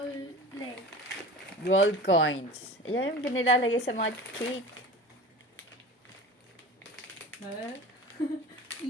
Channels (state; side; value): normal; both; correlation 0.36